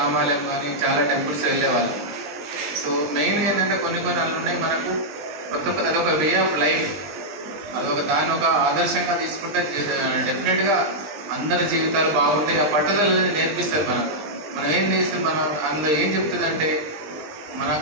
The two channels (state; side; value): late; left; 20 ms